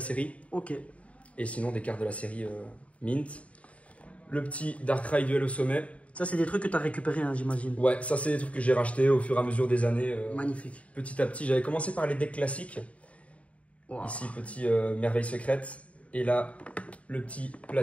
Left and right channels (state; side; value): late; right; 0.065 ms